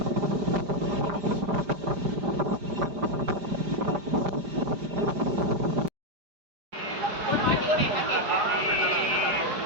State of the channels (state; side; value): late; left; 5.0 ms